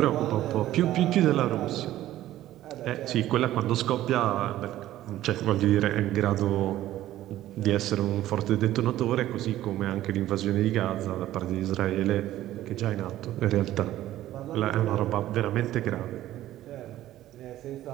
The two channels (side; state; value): left; quieter; 14.0 dB